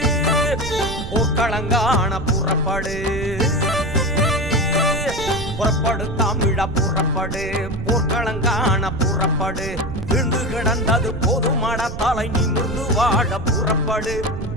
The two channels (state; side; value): noise; right; rumble, 8 dB below the sound